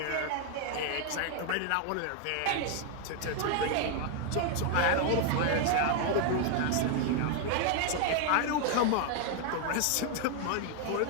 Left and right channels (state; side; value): different; both; correlation 0.00